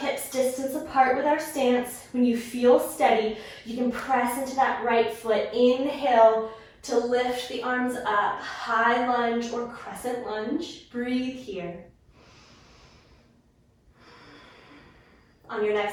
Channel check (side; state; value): both; identical; correlation 1.00